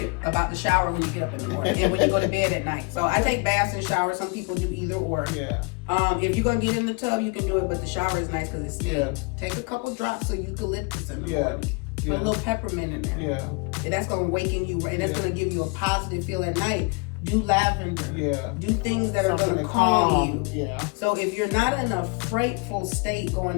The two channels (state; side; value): quieter; right; 30.4 dB